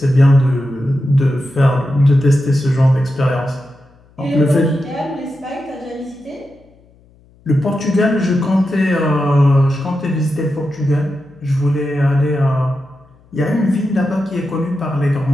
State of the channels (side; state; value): left; noise; hum, 30 dB below the sound